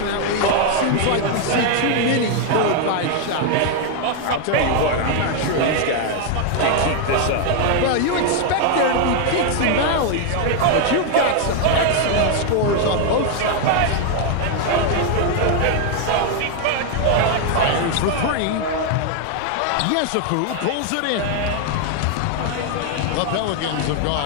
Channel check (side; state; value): both; different; correlation 0.00